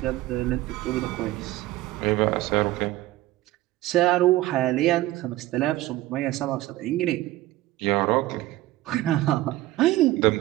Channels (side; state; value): left; quieter; 16.6 dB